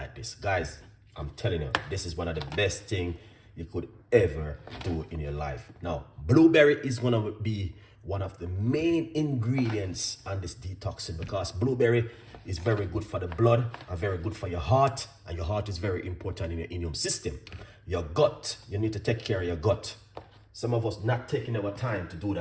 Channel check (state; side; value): identical; both; correlation 1.00